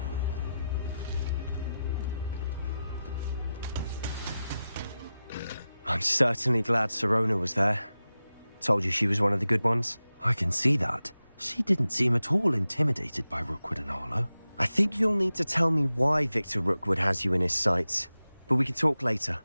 I'm certainly glad Sirona was there. Told you she was one of the good ones. I can see that. She didn't seem at all intimidated by Rookwood and Harlow. I think you'll need to tell me why Victor Rookwood has you in his sights. But we can talk later.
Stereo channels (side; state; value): both; inverted; correlation -0.93